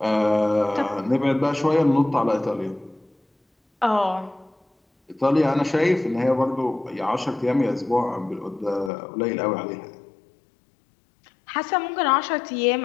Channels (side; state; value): right; drops out; at 8.9 s